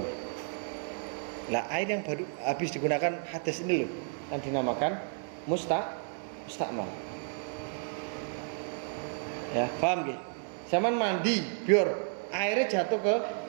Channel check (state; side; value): silent; left; 56 dB below the other